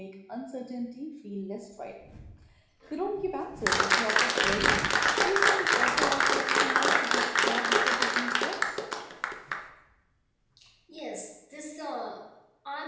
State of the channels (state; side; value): identical; both; correlation 1.00